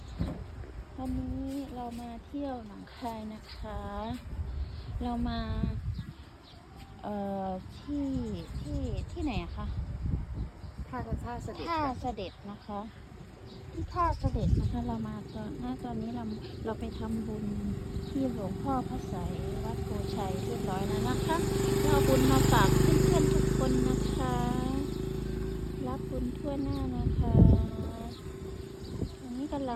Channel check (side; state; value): both; identical; correlation 1.00